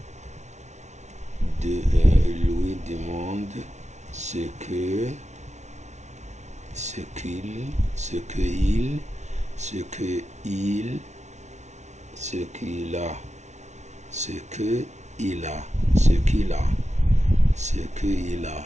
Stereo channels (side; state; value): left; late; 0.33 ms